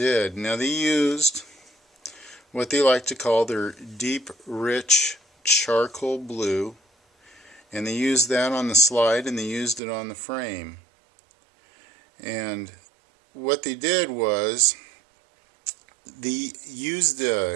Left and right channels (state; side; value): drops out; left; at 9.8 s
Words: Now they used what they like to call their deep, rich charcoal blue, and they used that on the slide and they used it on the frame. And what they did was they used